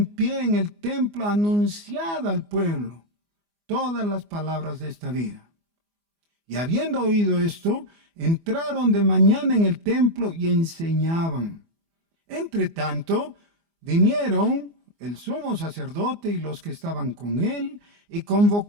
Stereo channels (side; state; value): left; late; 24 ms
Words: pie en el templo, anunciad al pueblo todas las palabras de esta vida. Y habiendo oído esto, entraron de mañana en el templo y enseñaban. Entre tanto, vinieron el sumo sacerdote y los que estaban con él, y